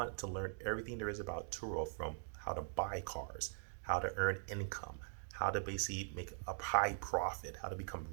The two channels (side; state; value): left; silent; digital silence